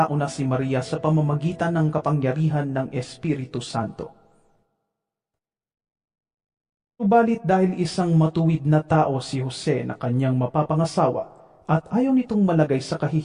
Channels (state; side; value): identical; both; correlation 1.00